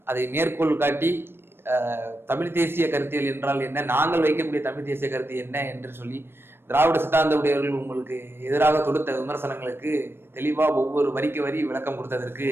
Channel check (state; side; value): late; left; 0.11 ms